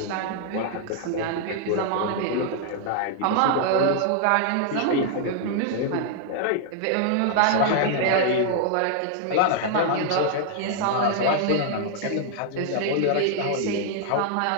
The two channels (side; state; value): both; different; correlation 0.00